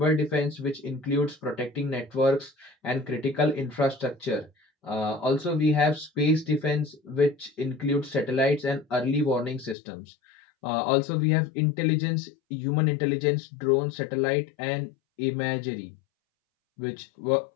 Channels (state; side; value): drops out; right; at 9.8 s